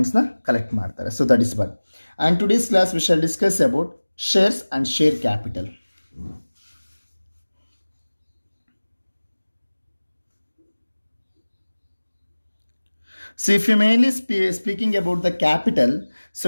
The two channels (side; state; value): both; inverted; correlation -1.00